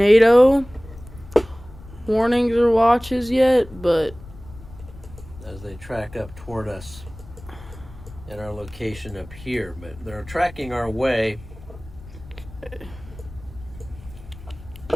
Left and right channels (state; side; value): noise; left; rumble, 18 dB below the sound